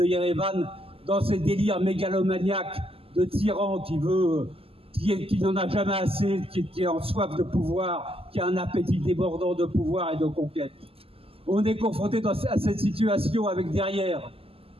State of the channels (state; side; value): late; left; 0.28 ms